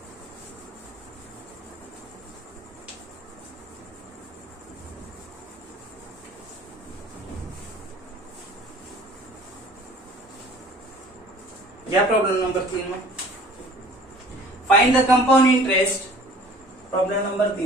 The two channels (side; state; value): both; normal; correlation 0.49